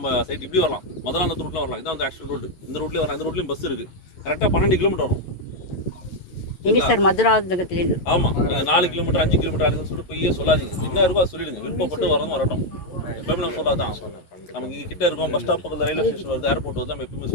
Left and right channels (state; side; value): late; right; 11 ms